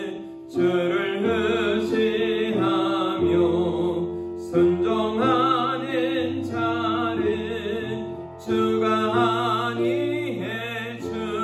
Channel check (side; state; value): both; identical; correlation 1.00